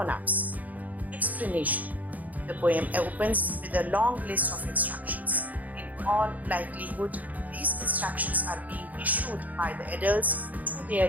Explanation. The poem opens with a long list of instructions. In all likelihood, these instructions are being issued by the adults to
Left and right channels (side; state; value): left; late; 0.078 ms